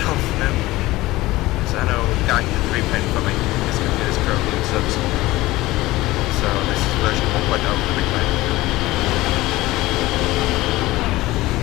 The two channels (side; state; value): right; quieter; 18.5 dB